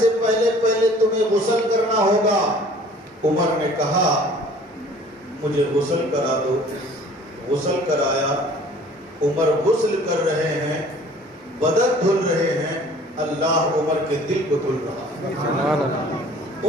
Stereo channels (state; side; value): normal; both; correlation 0.51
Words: پہلے تمہیں غسل کرنا ہوگا۔ عمر نے کہا مجھے غسل کرا دو، غسل کرایا۔ عمر غسل کر رہے ہیں، بدن دھل رہے ہیں، اللہ عمر کے دل کو دھل رہا ہے،